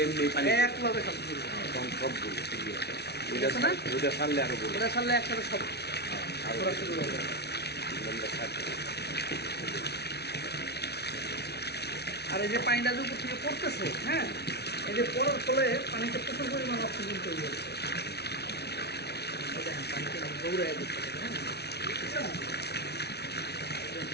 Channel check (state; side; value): late; right; 0.49 ms